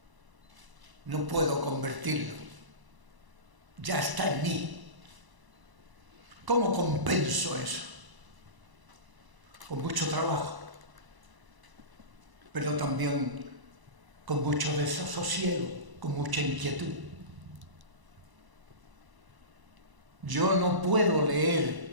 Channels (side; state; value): left; late; 1.0 ms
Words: no puedo convertirlo, ya está en mí. ¿Cómo compenso eso? Con mucho trabajo, pero también con mucho desasosiego, con mucha inquietud. Yo no puedo